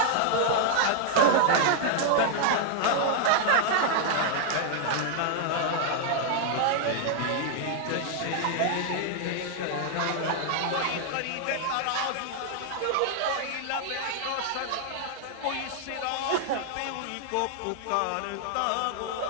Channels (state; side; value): different; both; correlation 0.00